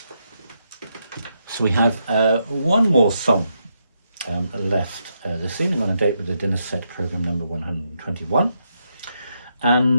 So we have one more song left this evening on a date with the dinner set program number 121.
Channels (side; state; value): both; inverted; correlation -0.81